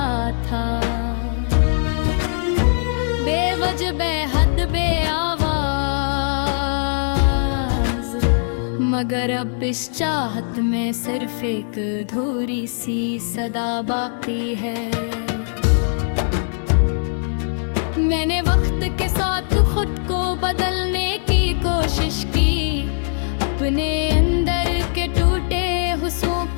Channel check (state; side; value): silent; right; 65 dB below the other